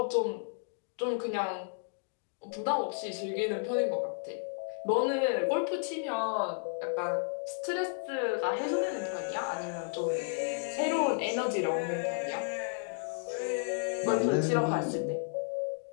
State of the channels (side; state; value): right; silent; digital silence